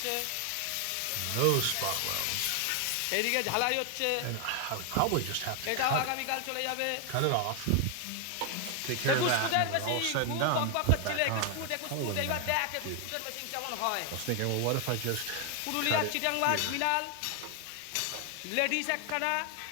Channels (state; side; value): different; both; correlation 0.00